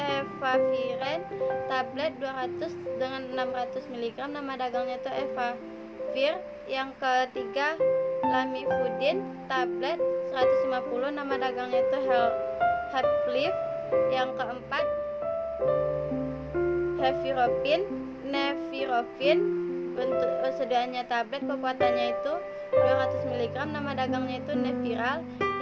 tablet 200 dengan 600 mg, nama dagangnya itu Evavir. Yang ketiga, lamivudin tablet 150, nama dagangnya itu Heplif. Yang keempat, nevirofin, bentuk sedianya tablet, kekuatannya itu 200 mg, nama dagangnya itu Neviral.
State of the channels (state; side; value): identical; both; correlation 1.00